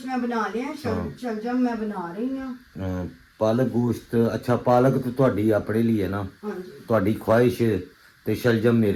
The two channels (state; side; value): identical; both; correlation 1.00